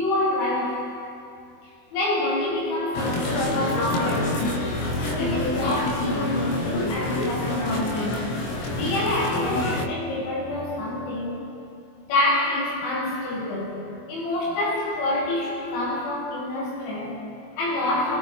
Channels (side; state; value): right; late; 24 ms